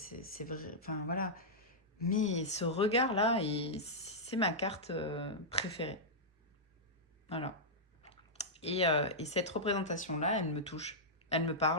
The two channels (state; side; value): normal; both; correlation -0.10